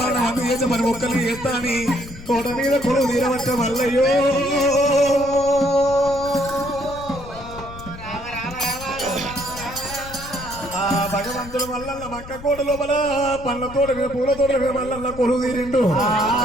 మంది చేసి మరి ఒక్కరు చేస్తాని తోట మీద కొడుకు తీరవచ్చ మల్లయ్యో భగవంతుడు మల్లన్న మక్క కోట లోపల పండ్ల తోట మీద పూల తోట మీద మల్లన్న కొలువు తీరిండు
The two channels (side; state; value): left; noise; rumble, 14 dB below the sound